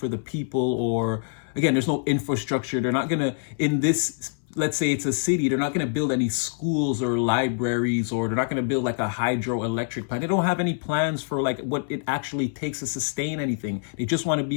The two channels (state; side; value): silent; right; 59 dB below the other